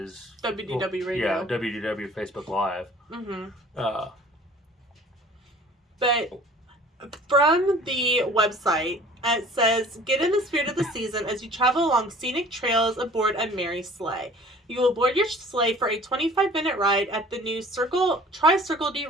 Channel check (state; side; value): normal; both; correlation 0.49